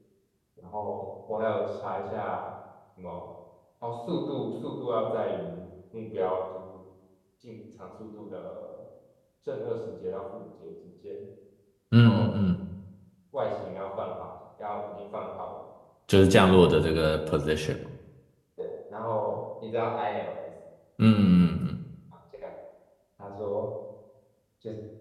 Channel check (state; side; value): identical; both; correlation 1.00